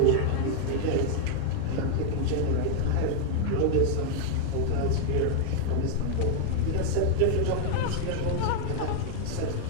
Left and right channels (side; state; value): both; different; correlation 0.00